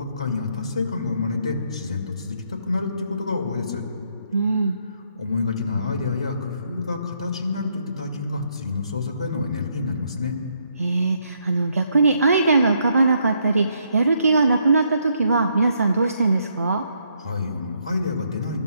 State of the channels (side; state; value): both; inverted; correlation -0.74